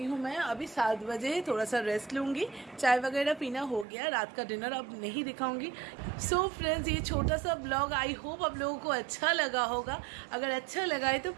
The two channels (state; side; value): drops out; left; at 3.9 s